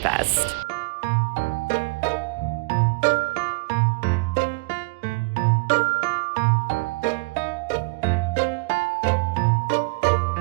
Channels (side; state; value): left; quieter; 30.7 dB